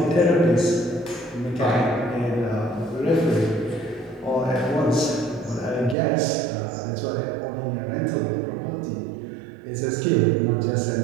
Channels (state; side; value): drops out; left; at 6.0 s